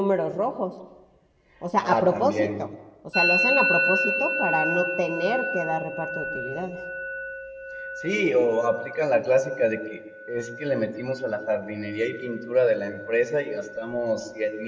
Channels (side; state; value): both; identical; correlation 1.00